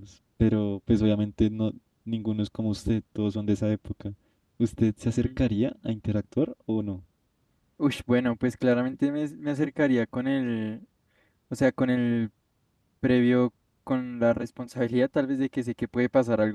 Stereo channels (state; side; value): identical; both; correlation 1.00